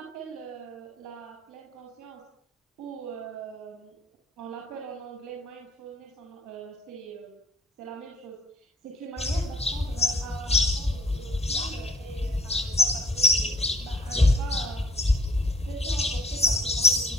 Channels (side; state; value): both; normal; correlation 0.57